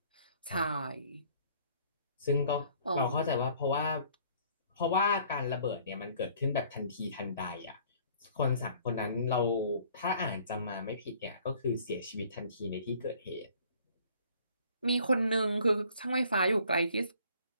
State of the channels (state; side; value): inverted; both; correlation -0.56